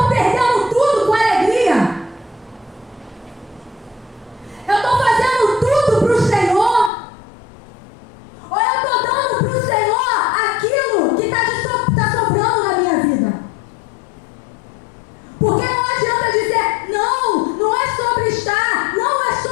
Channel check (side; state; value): right; drops out; at 6.9 s